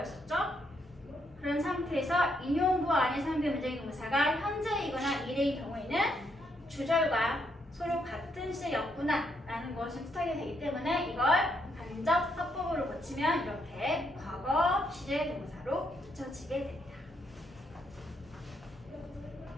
그런 상태에서 인용구 안에 사용된 문장의 동사가 현재이거나 미래의 경우에는 주절과 서로 같은 시제였구나 라는 것을 뜻하게 되기 때문에 이걸 간접 화법으로 고치면 이렇게 과거 시제 동사로 고쳐지게 됩니다.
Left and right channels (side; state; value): both; normal; correlation 0.76